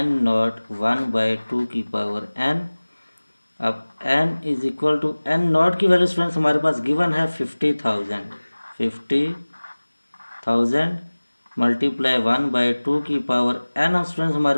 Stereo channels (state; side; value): inverted; both; correlation -1.00